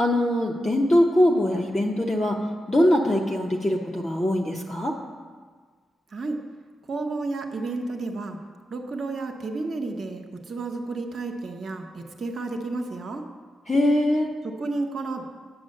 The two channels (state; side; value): normal; both; correlation 0.89